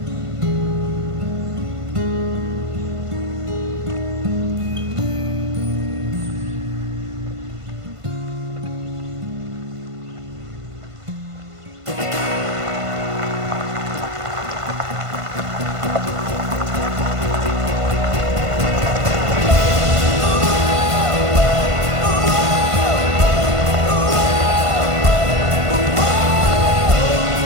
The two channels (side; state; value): left; late; 1.5 ms